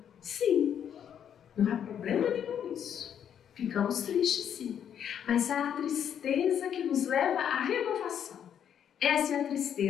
Sim, não há problema nenhum nisso. Ficamos tristes sim, mas há a tristeza que nos leva à renovação. Essa é a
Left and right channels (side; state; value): right; quieter; 8.9 dB